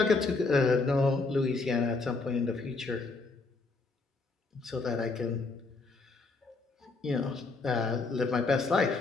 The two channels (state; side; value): quieter; right; 3.8 dB